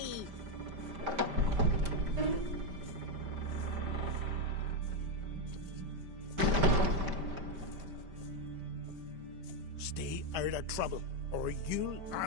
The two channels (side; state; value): left; late; 5.1 ms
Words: Stay out of trouble, or you'll